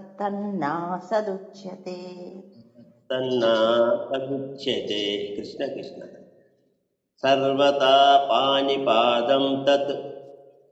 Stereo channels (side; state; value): both; identical; correlation 1.00